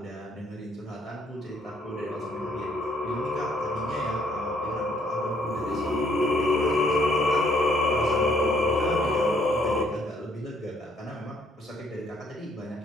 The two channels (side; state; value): both; normal; correlation 0.67